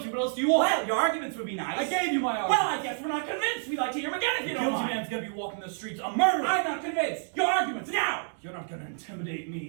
What else do you want? well, your arguments would be nice. I gave you my argument. Well, I guess we're not convinced. We'd like to hear them again if The you don't guilty mind. man's gonna be walking the streets a murderer. I'm not convinced. Your arguments now. You're not gonna intimidate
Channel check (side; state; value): left; silent; digital silence